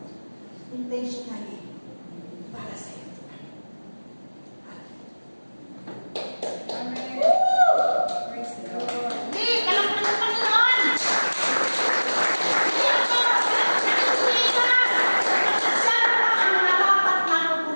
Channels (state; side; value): inverted; both; correlation -1.00